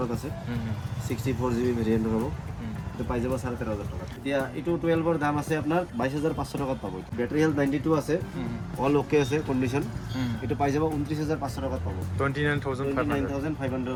আছে 64GB ভেৰিয়েণ্ট পাবো এটা পাই যাব 13,500 টাকা এতিয়া এটো 12 এর দাম আছে আপনার 22,500 টাকা পাবো ব্যাটারি হেলথ 92 আছে অল ওকে আছে কন্ডিশন এটা পাই যাব 29,500 টাকা পাবো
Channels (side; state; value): both; identical; correlation 1.00